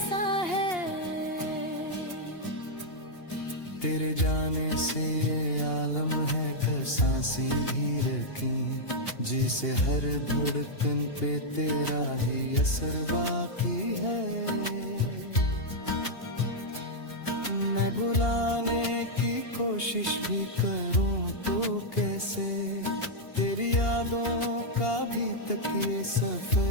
है। तेरे जाने से ये आलम है का सांसें भी रखी, जिसे हर धड़कन पे तेरा ही असर बाकी है। मैं भुलाने की कोशिश भी करूं तो कैसे, तेरी यादों का भी तक ये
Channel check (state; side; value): late; right; 2.8 ms